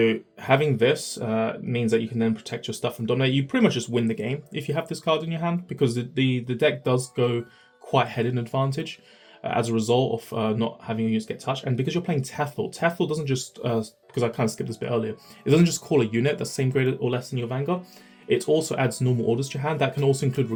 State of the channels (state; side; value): identical; both; correlation 1.00